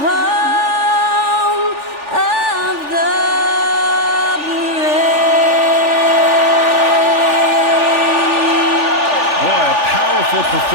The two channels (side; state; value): left; late; 3.4 ms